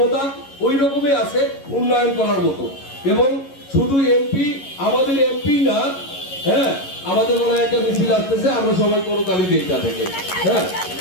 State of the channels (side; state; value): right; late; 11 ms